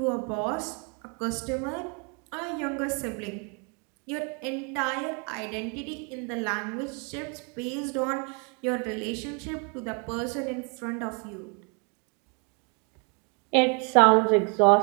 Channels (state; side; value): quieter; left; 35.4 dB